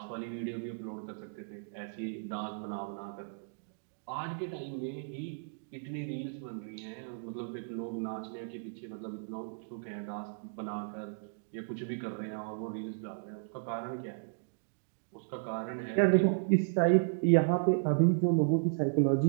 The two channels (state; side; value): silent; left; digital silence